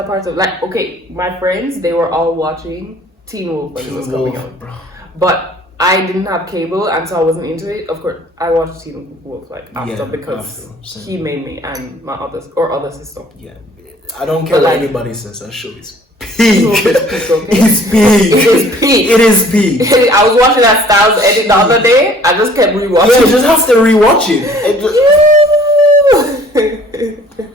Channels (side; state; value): both; normal; correlation 0.54